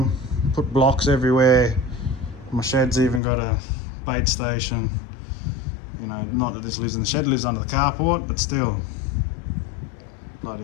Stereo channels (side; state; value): right; drops out; at 3.2 s